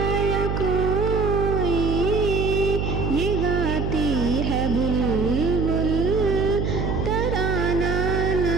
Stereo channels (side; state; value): right; noise; hum, 1 dB below the sound